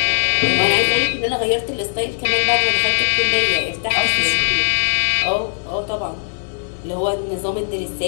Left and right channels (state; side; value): silent; right; 61 dB below the other